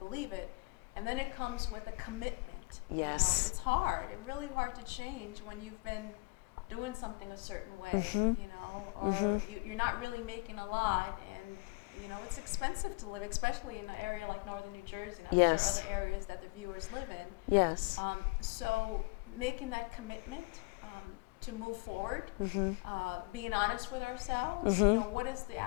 it. And then it comes with a commitment. Yes. You know, it's hard. It's really hard to change when you've been doing something a certain way, you know, or you're not really making a lot, and you know it's expensive to live, especially in an area like northern New Jersey, and I'm sure Yes. other areas that the viewers live in. Yes. So making that commitment to move forward, being honest with ourselves, you know, what is the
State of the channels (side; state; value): right; quieter; 26.9 dB